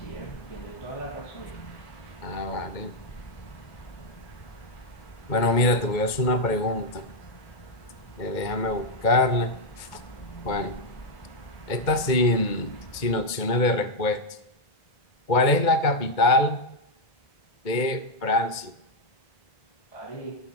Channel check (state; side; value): late; right; 2.1 ms